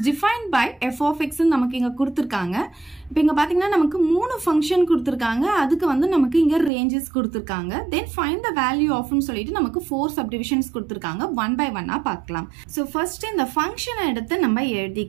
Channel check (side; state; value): left; drops out; at 6.7 s